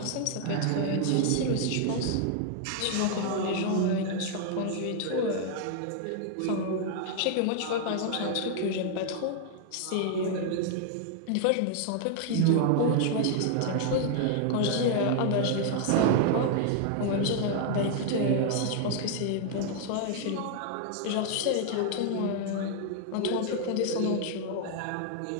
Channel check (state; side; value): different; both; correlation 0.00